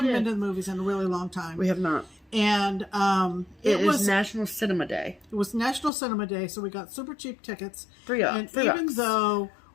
been to the movies in a really long time. We have not. And it was National Cinema Day. It was National Cinema Day, so we got super cheap tickets. $3. Even though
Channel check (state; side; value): drops out; right; at 5.9 s